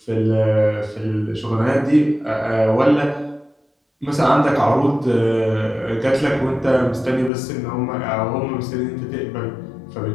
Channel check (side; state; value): right; drops out; at 7.3 s